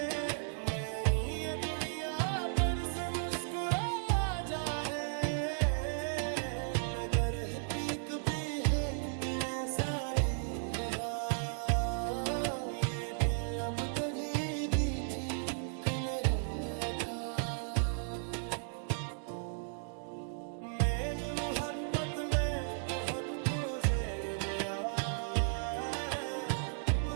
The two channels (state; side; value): silent; left; digital silence